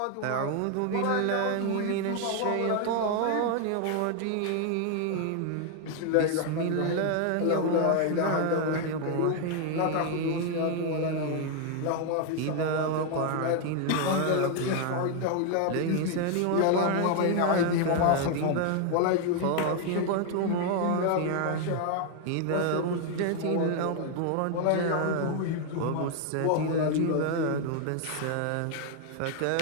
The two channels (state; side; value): different; both; correlation 0.00